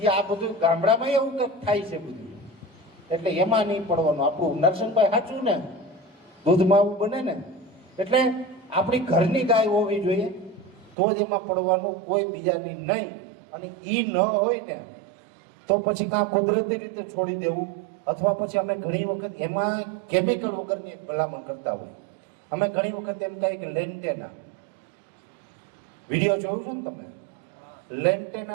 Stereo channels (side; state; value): left; drops out; at 11.0 s